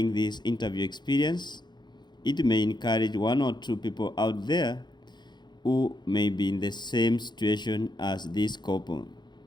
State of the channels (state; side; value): late; right; 0.21 ms